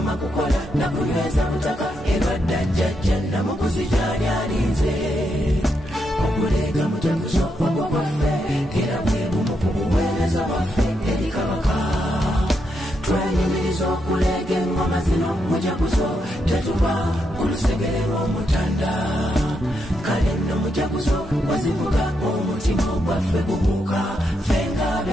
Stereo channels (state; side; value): normal; both; correlation 0.81